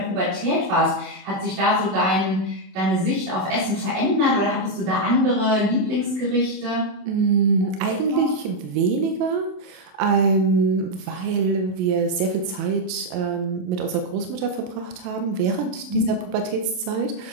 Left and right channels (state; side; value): late; left; 27 ms